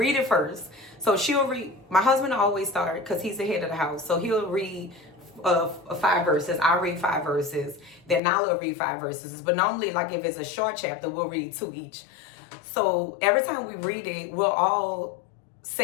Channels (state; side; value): drops out; right; at 8.2 s